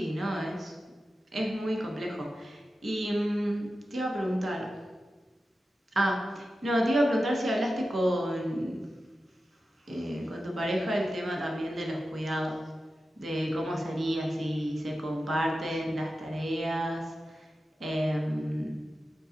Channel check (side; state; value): both; normal; correlation 0.92